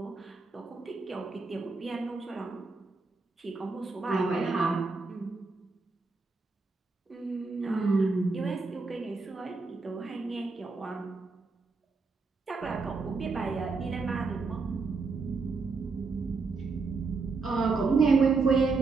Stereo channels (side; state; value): left; quieter; 4.1 dB